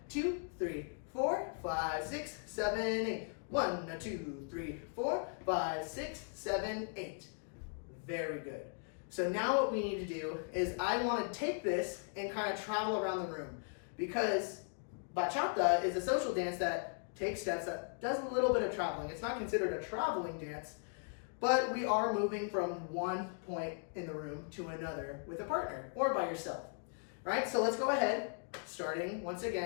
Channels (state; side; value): silent; right; 52 dB below the other